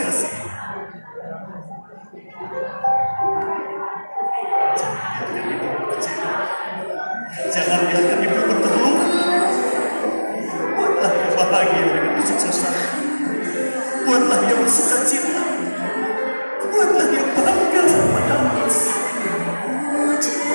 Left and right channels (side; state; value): both; inverted; correlation -1.00